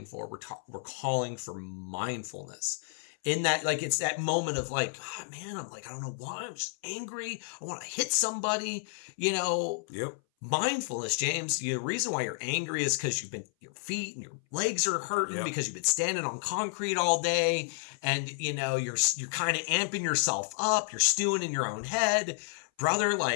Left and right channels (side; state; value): right; silent; 57 dB below the other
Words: for? We're calling for mindfulness. In that, it's that moment of I don't know why, I'm just angry. I want to hit somebody, Yep. Mindfulness, James. The reason why you're angry is because your feet and your legs are hurting because you've been standing on concrete all day, and you're kind of amping yourself up. You're stewing in your own head, brother.